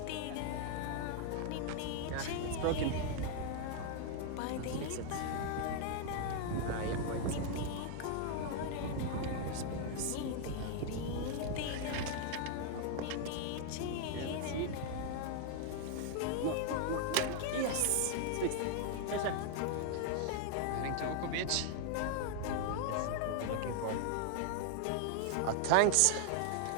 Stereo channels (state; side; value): different; both; correlation 0.00